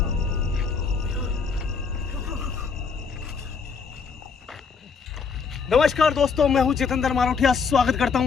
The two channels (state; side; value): quieter; right; 5.4 dB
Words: नमस्कार दोस्तों, मैं हूं जितेंद्र मारोठिया। स्वागत करता